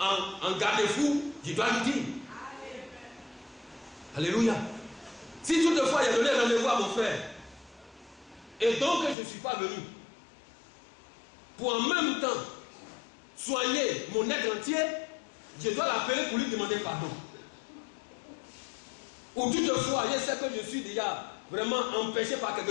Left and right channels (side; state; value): right; drops out; at 9.2 s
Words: en garde-fou, je dois lui dire. Alléluia. Si toutefois il a donné rendez-vous à mon frère, et donc je ne suis pas venu, pour en même temps soigner mon être entier, je dois l'appeler pour lui demander pardon. Ou toutefois, je sais que je suis déjà vraiment empêché par